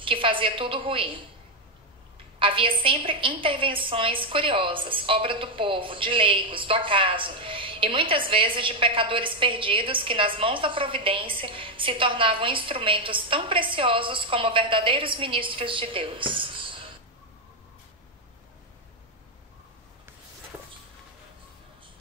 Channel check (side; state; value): both; normal; correlation 0.05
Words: que fazia tudo ruir. Havia sempre intervenções curiosas, obra do povo, de leigos, do acaso, e muitas vezes de pecadores perdidos que nas mãos da providência se tornavam instrumentos tão preciosos como verdadeiros ministros de Deus.